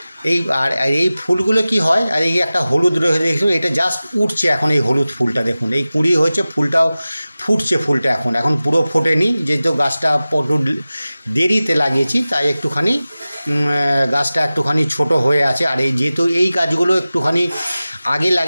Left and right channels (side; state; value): both; inverted; correlation -0.96